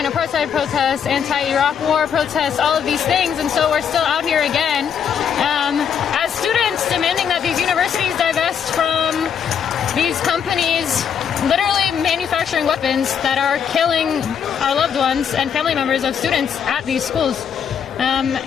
apartheid protests, anti-Iraq War protests, all of these things, and so we're still out here again as students demanding that these universities divest from these companies literally manufacturing weapons that are killing our loved ones and family members of students at these schools.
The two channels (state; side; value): quieter; right; 7.7 dB